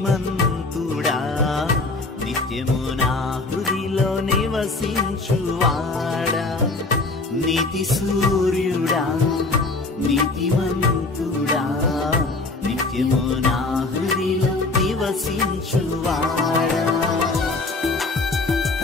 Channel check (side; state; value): right; quieter; 3.4 dB